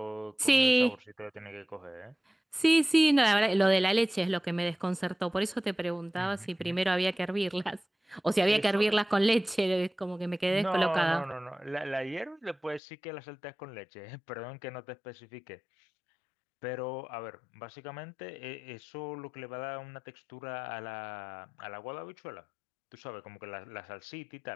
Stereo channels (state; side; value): drops out; right; at 12.8 s